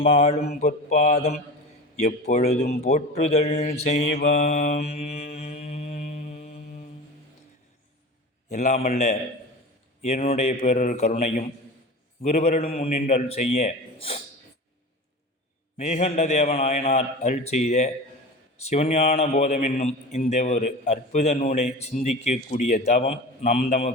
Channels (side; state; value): both; normal; correlation 0.32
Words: மாளும் பொற்பாதம் எப்பொழுதும் போற்றுதல் செய்வம். எல்லாமல்ல என்னுடைய பேரொரு கருணையும் குருவருளும் முன்னின்றல் செய்ய மேகண்ட தேவநாயனார் அருள் செய்த சிவஞான போதம் என்னும் இந்த ஒரு அற்புத நூலை சிந்திக்கக்கூடிய தவம் நம்